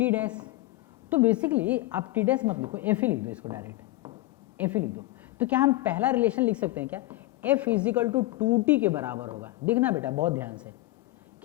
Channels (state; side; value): quieter; right; 18.5 dB